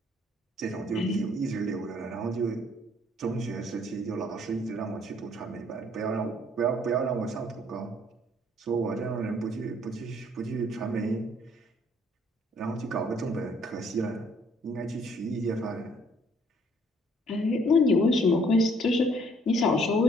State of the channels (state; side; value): normal; both; correlation 0.62